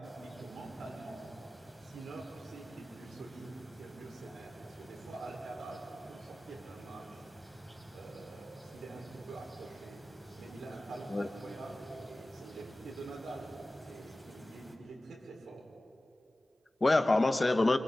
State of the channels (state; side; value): normal; both; correlation 0.96